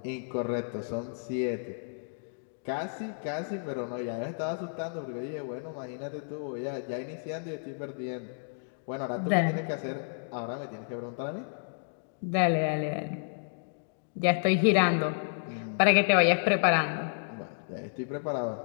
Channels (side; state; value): right; silent; digital silence